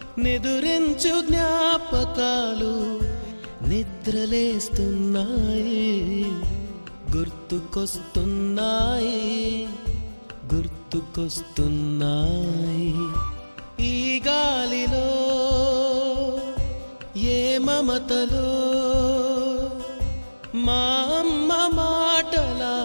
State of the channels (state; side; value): inverted; both; correlation -1.00